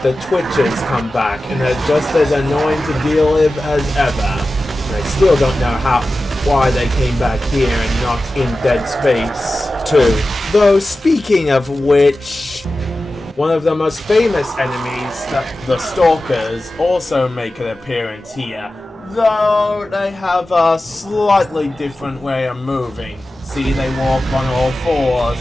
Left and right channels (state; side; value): normal; both; correlation 0.94